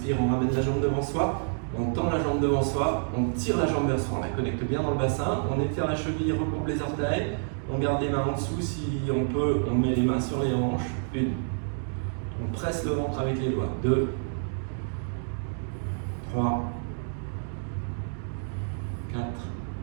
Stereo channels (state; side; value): silent; left; digital silence